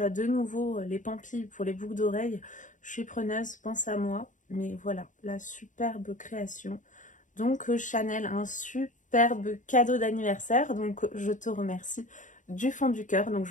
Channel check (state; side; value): late; right; 0.37 ms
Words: as de nouveau les pampilles pour les boucles d'oreilles, je suis preneuse, pense à moi. Mais voilà, la superbe création. Donc Chanel, un superbe cadeau d'anniversaire. Donc je te remercie du fond du cœur. Donc